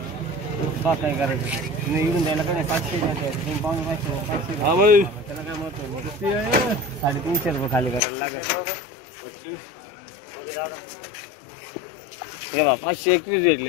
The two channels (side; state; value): right; drops out; at 8.0 s